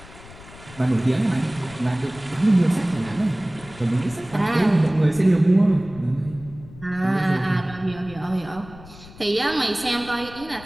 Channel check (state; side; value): noise; left; rumble, 19 dB below the sound